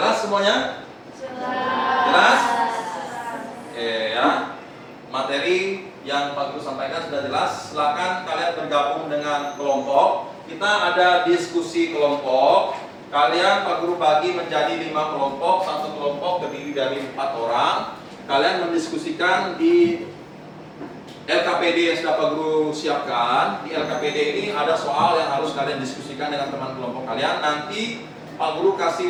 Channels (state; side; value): identical; both; correlation 1.00